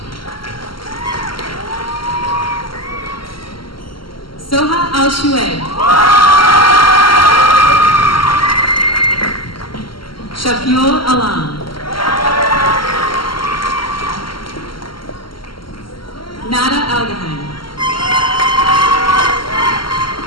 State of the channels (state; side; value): late; right; 0.73 ms